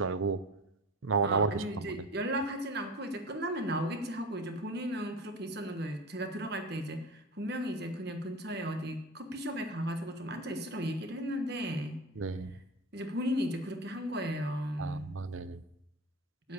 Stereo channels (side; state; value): both; normal; correlation 0.30